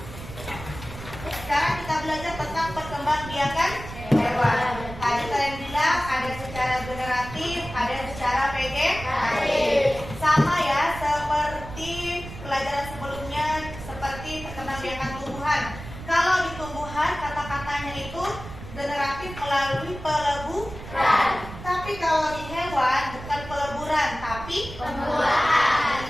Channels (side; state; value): right; noise; rumble, 12 dB below the sound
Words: Sekarang kita belajar tentang perkembangbiakan hewan. Tadi kalian bilang ada secara generatif, ada yang secara vegetatif. Sama ya seperti pelajaran sebelumnya, seperti perkembangbiakan tumbuhan. Kalau di tumbuhan kata-katanya itu generatif melalui peleburan. Tapi kalau di hewan bukan peleburan, tapi pembuahan.